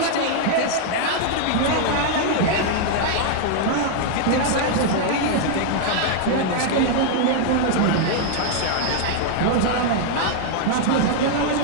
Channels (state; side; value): different; both; correlation 0.00